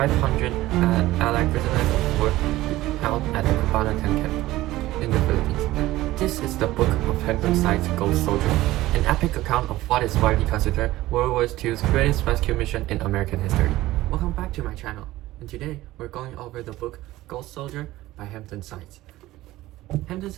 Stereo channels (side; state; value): left; quieter; 16.8 dB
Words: Allied prisoners of war held at the Cabanatuan camp in the Philippines. This is the book of Hampton Sides, Ghost Soldier, an epic account of what is widely considered World War II's greatest rescue mission in American history. Welcome back to my channel, and today we're going over the book Ghost Soldier by Hampton Sides. Hampton